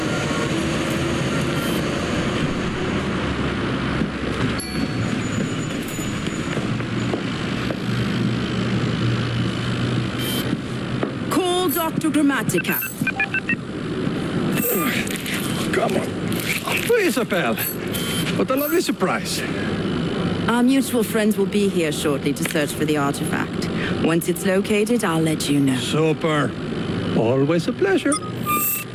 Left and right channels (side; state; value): both; identical; correlation 1.00